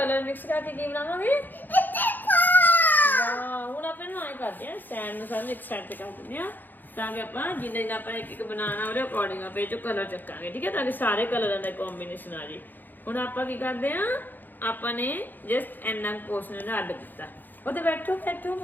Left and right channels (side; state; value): right; late; 0.088 ms